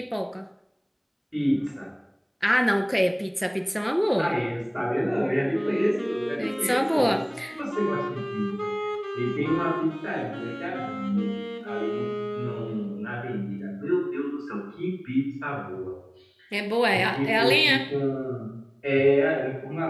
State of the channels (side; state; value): both; identical; correlation 1.00